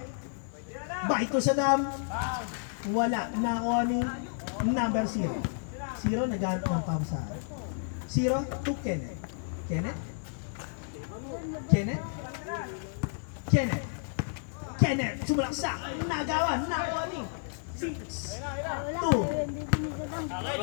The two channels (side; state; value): right; silent; digital silence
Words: to Sadam. Wala. Nakuha ni number 0. 0 naghanap ng pausa. 0 to Kenneth. Kenneth? Kenneth? Kenneth? Kenneth, sumalaksak, nagawa, nakuha ni 6,